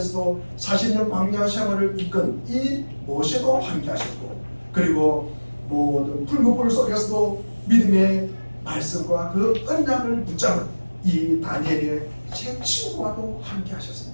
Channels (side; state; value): both; inverted; correlation -1.00